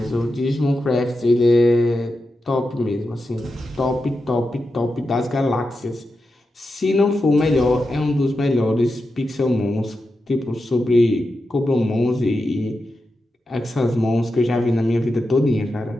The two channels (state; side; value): normal; both; correlation 0.89